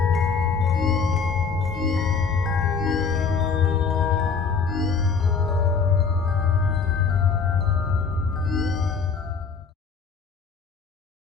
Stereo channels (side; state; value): right; quieter; 5.4 dB